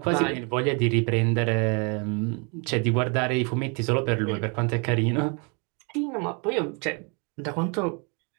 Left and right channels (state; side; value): quieter; left; 34.2 dB